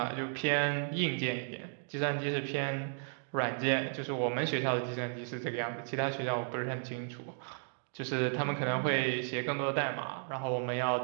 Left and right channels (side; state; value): left; silent; digital silence